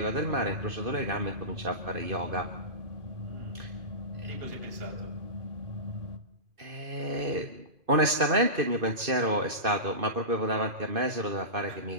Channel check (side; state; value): left; late; 2.5 ms